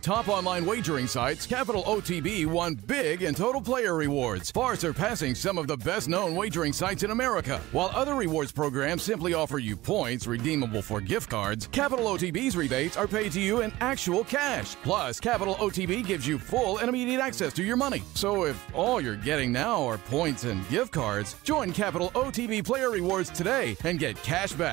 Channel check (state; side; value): quieter; left; 18.1 dB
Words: online wagering sites, Capital OTB won big in total player rewards, far surpassing some of the best-known wagering sites in America. While other rewards programs simply offer you points redeemable for gift cards, Capital OTB's rebates are paid to you in actual cash. Plus, Capital OTB gives you full and immediate access to your money. So if all you're getting now are points and gift cards, join Capital OTB Player Rewards today and get cash